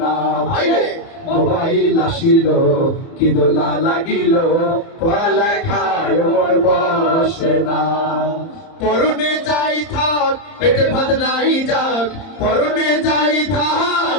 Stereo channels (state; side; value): late; right; 30 ms